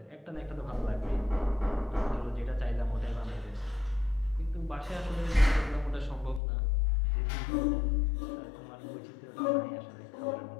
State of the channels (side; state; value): right; drops out; at 6.4 s